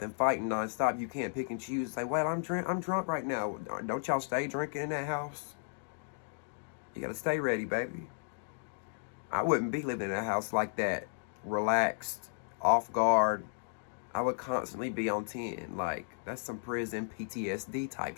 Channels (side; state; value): right; silent; digital silence